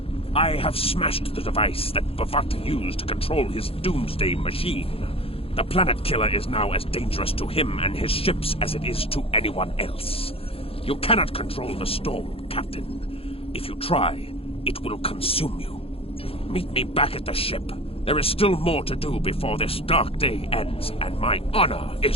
I have smashed the device that Bavat used to control his doomsday machine. The planet killer is now as dangerous to him and his ships as it is to anyone else. You cannot control the storm, Captain. If you try, it will consume you. Meet me back at the ship. There is still more to do before this dark day ends and my honor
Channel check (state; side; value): late; right; 0.27 ms